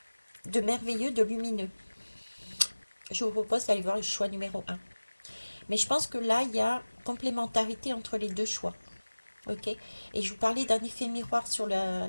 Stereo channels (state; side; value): inverted; both; correlation -1.00